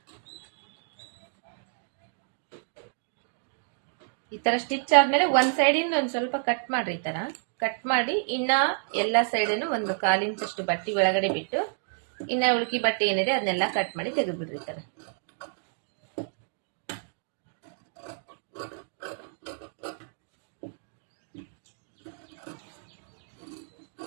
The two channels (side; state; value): left; silent; digital silence